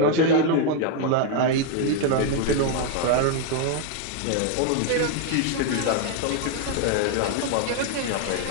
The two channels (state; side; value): different; both; correlation 0.00